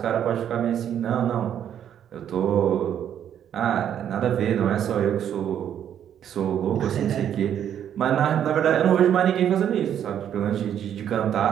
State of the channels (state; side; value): quieter; left; 9.6 dB